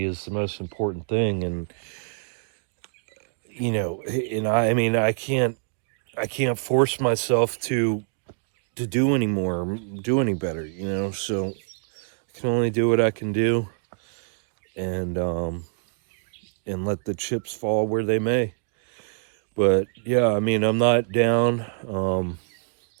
is the most important thing. And, you know, and I mean, I can't force myself to do anymore, do any better, you know. So I can only do what I can do, and let the chips fall where they may. But yeah, I mean, I'm not down.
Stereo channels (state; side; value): silent; left; digital silence